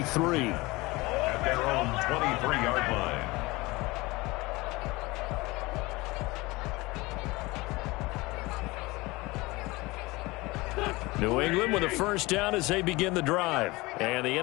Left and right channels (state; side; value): quieter; right; 22.2 dB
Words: At their own 23-yard line. New England with a 1st down as they begin the drive. And the